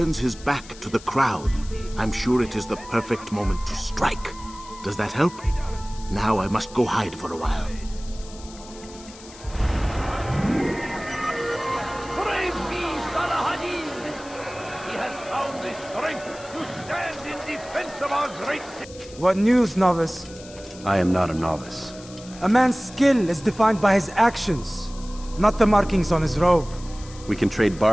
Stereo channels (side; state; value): left; noise; hiss, 19 dB below the sound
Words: his back to the crowd. I'm sure it is the perfect moment to strike. Does that help? Now I must go hide for a while. Praise be Salahadin! He has found the strength to stand in defense of our great city. What news, novice? I am not a novice. A man's skill is defined by his actions, not the markings on his robe. We can trade